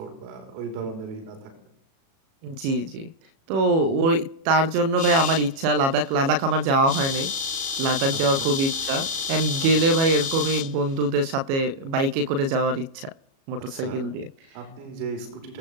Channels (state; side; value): late; left; 37 ms